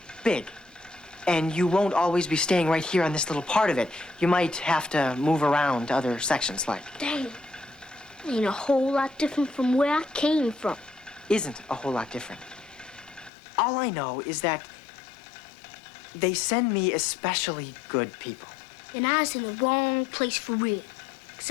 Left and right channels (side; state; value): right; drops out; at 13.3 s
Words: big, and you won't always be staying right here on this little part of it. You might have to move around to other sections, like. Dang. Ain't a whole lot different from where I came from. Isn't a whole lot different. All I know is that they send me especially good people. And I was in the wrong place for real. 'Cause